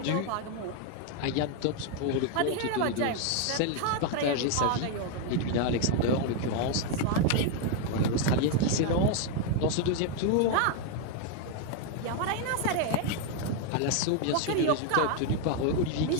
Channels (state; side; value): different; both; correlation 0.00